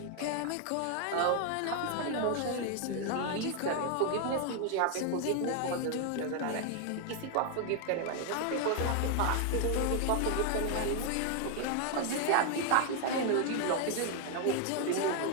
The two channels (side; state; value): both; different; correlation 0.01